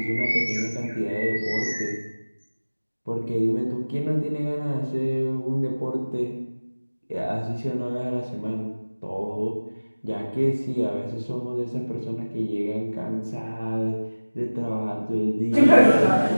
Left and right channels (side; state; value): both; inverted; correlation -1.00